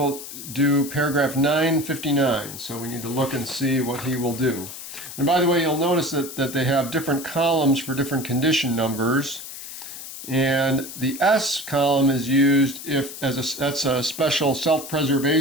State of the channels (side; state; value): left; noise; hiss, 11 dB below the sound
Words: do paragraph 959. So we need to look and see what he will do. And by the way, you'll notice that they have different columns for different condition numbers. And the S column is used if that's a special